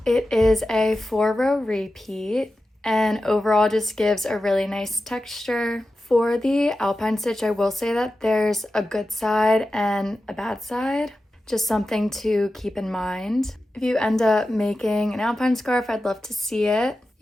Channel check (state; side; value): normal; both; correlation 0.93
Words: It is a 4-row repeat and overall just gives a really nice texture. For the Alpine stitch, I will say that there's a good side and a bad side, just something to keep in mind. If you end up making an Alpine scarf, I'd love to see it.